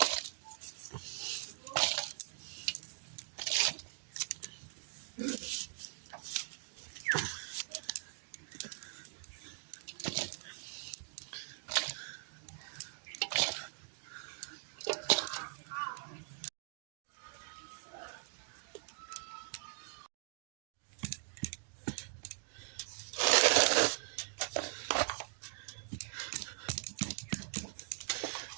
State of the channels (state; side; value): silent; left; digital silence